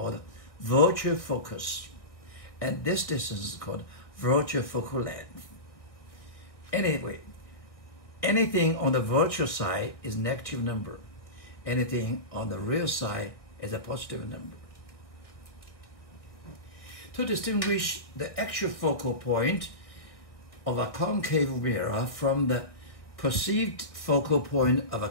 virtual focus. And this distance is called virtual focal length. Anyway, anything on the virtual side is negative number. Anything on the real side is a positive number. To distinguish the actual focal point of a concave mirror from the perceived focal point of a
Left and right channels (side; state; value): right; late; 1.4 ms